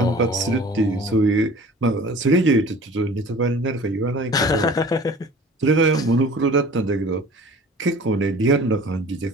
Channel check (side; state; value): both; normal; correlation 0.44